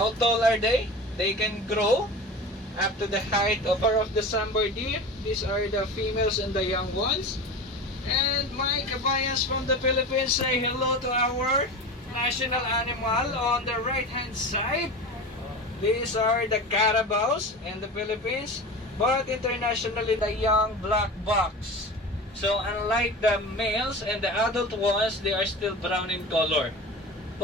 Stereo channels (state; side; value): normal; both; correlation 0.31